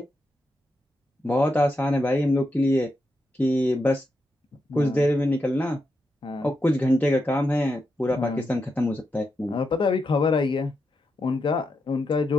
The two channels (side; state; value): both; normal; correlation 0.85